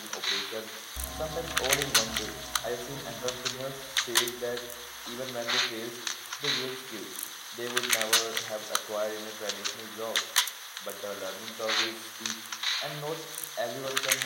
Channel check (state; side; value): identical; both; correlation 1.00